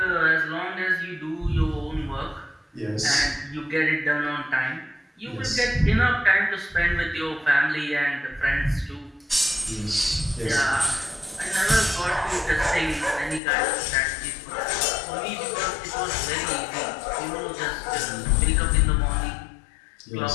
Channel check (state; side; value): drops out; right; at 13.4 s